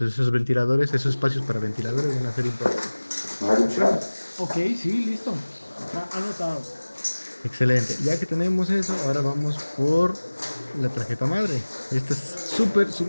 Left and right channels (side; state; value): both; inverted; correlation -1.00